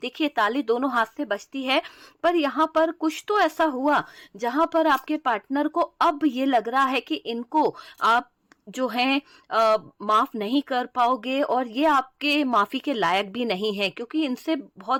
ताली दोनों हाथ से बजती है, पर यहाँ पर कुछ तो ऐसा हुआ जहां पर आपके पार्टनर को अब ये लग रहा है कि इनको आप जो है माफ नहीं कर पाओगे और ये आपके माफी के लायक भी नहीं है, क्योंकि इनसे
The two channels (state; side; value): identical; both; correlation 1.00